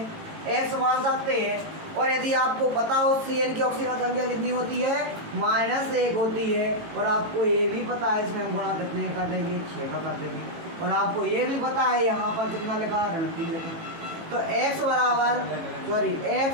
एक्स मान सकते हैं। और यदि आपको पता हो CN की ऑक्सीजन संख्या कितनी होती है, -1 होती है। और आपको ये भी पता है, इसमें हम गुणा कितने का कर देंगे, 6 का कर देंगे। और आपको ये भी पता है यहाँ पर कितना लिखा है, ऋण 3 लिखा। तो x बराबर, सॉरी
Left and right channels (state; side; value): late; left; 18 ms